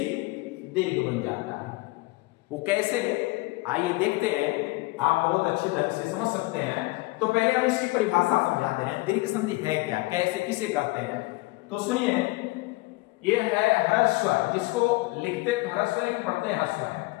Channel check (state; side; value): quieter; right; 22.9 dB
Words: दीर्घ बन जाता है। वो कैसे? आइए देखते हैं, आप बहुत अच्छे ढंग से समझ सकते हैं। तो पहले हम इसकी परिभाषा समझा दे रहे हैं। दीर्घ संधि है क्या, कैसे, किसे कहते हैं? तो सुनिए, ये है ह्रस्व, जिसको लिखते तो ह्रस्व लेकिन पढ़ते हैं ह्रस्व है।